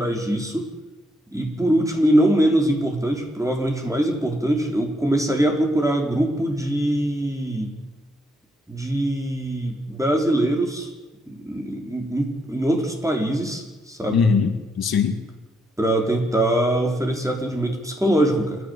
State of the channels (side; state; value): both; normal; correlation 0.77